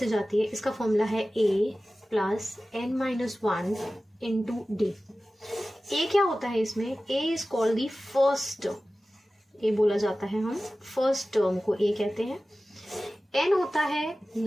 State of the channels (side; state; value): both; normal; correlation 0.96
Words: जाती है, इसका फॉर्मूला है a plus n-1 into D. a क्या होता है इसमें? a is called the first term. a बोला जाता है, हम फर्स्ट टर्म को a कहते हैं। n होता है